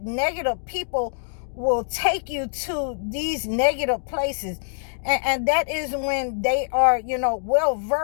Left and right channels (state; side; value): silent; right; digital silence